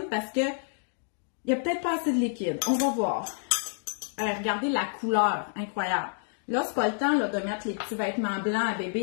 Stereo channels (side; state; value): right; silent; digital silence